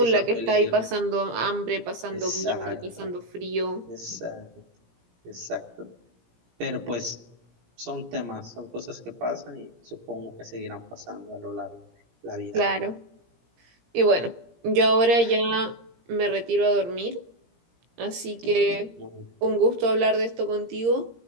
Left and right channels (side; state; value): left; late; 17 ms